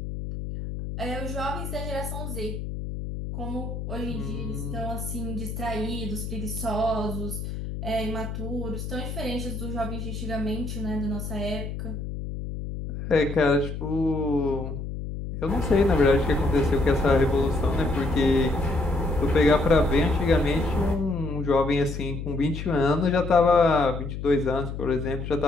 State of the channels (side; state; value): left; noise; hum, 6 dB below the sound